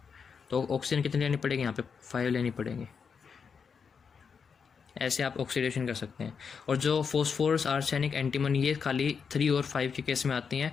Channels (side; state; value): right; quieter; 6.1 dB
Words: तो ऑक्सीजन कितनी लेनी पड़ेगी? यहाँ पे 5 लेनी पड़ेगी। ऐसे आप ऑक्सीडेशन कर सकते हैं। और जो फॉस्फोरस, आर्सेनिक, एंटीमनी, ये खाली 3 और 5 के केस में आती